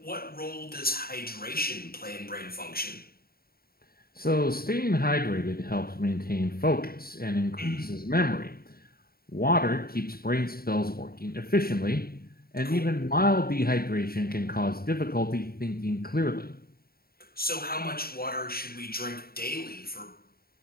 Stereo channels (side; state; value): right; late; 0.44 ms